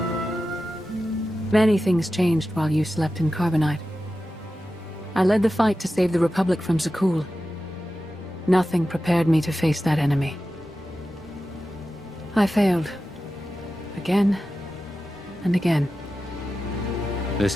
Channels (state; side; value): normal; both; correlation 0.93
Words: Many things changed while you slept in Carbonite. I led the fight to save the Republic from Zakul. Nothing prepared me to face that enemy. I failed. Again and again.